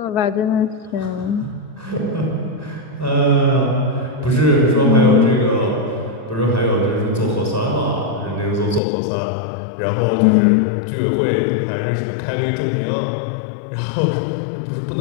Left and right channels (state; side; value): drops out; right; at 8.8 s